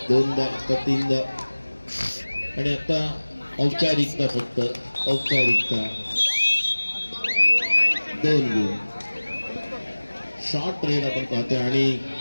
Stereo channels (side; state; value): both; inverted; correlation -1.00